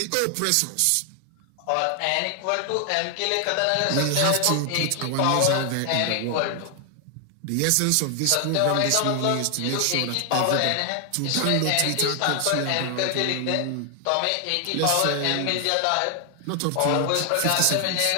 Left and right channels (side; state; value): both; different; correlation 0.00